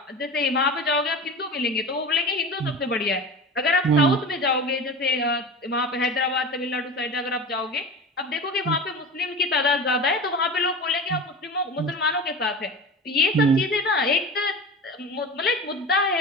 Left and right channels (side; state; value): both; normal; correlation 0.31